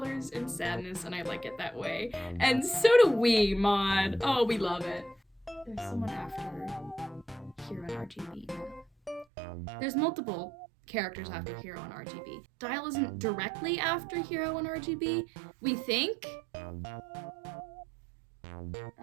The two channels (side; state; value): left; drops out; at 9.2 s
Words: and sadness, and I like it that way. And so do we, Mod. Oh, we love it. There's someone after Hero and RGB now. There's multiple characters after Hero and RGB. Dial isn't directly after Hero and RGB, we think.